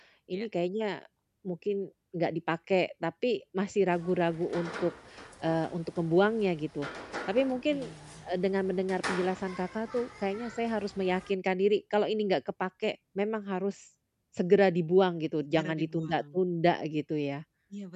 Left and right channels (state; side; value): identical; both; correlation 1.00